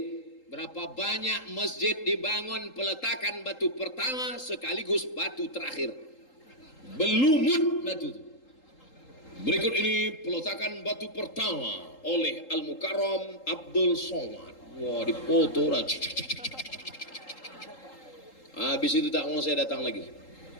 Berapa banyak masjid dibangun peletakan batu pertama sekaligus batu terakhir. Belumut batu itu. Berikut ini peletakan batu pertama oleh Al-Mukarram Abdul Somad. Wah, dipoto. Habis itu tak mau saya datang lagi.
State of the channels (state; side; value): late; right; 3.8 ms